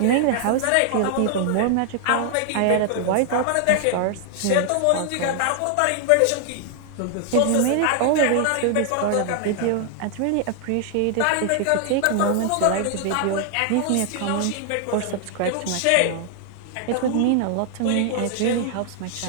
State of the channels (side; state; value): both; different; correlation 0.00